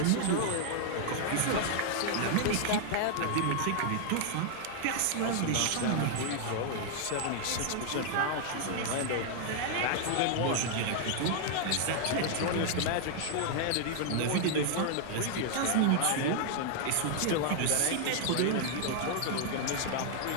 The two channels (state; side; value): different; both; correlation 0.00